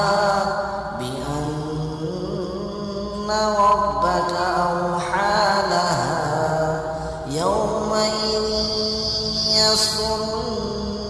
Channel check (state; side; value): identical; both; correlation 1.00